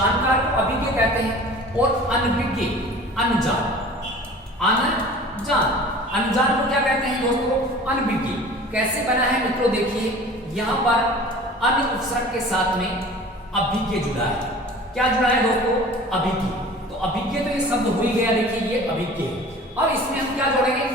को अभिज्ञ कहते हैं, और अनभिज्ञ, अनजान, अनजान। अनजान को क्या कहते हैं दोस्तों? अनभिज्ञ। कैसे बना है मित्रों? देखिए यहाँ पर अन उपसर्ग के साथ में अभिज्ञ जुड़ा है। क्या जुड़ा है दोस्तों? अभिज्ञ। तो अभिज्ञ तो ये शब्द हो ही गया, देखिए ये अभिज्ञ। और इसमें हम क्या जोड़ेंगे?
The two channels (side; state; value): both; normal; correlation 0.43